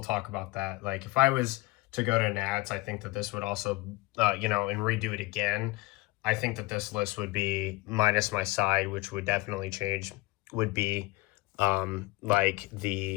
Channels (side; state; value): right; quieter; 22.2 dB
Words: talk about that. Like if I was to go to Nats, I think that this would also, you know, and redo it again. I think that this list would be minus my side, which would definitely change, would be like